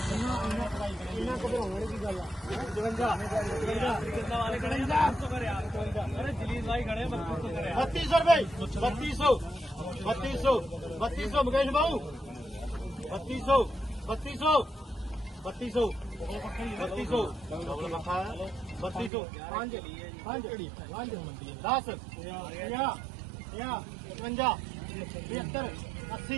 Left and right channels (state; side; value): drops out; left; at 19.1 s